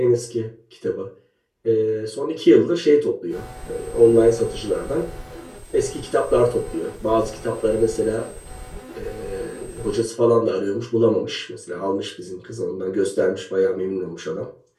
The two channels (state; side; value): identical; both; correlation 1.00